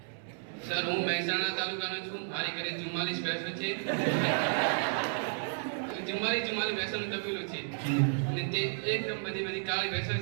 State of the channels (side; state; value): left; silent; 56 dB below the other